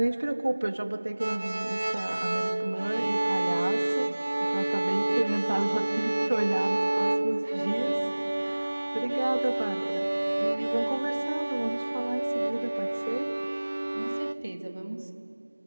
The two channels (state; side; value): inverted; both; correlation -1.00